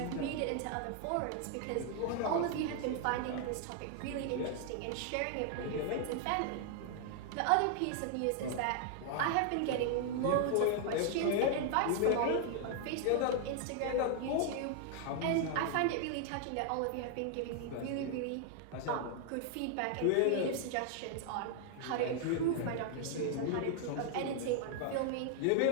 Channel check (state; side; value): different; both; correlation 0.00